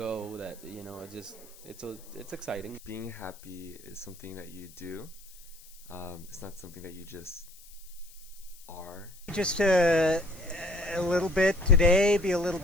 that, it's exciting. Being happy is something that you do. It's not something that you just are. Just to a little bit today, be a little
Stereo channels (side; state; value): left; noise; hiss, 21 dB below the sound